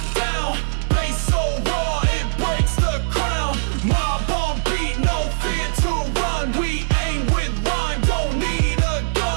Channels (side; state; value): left; silent; digital silence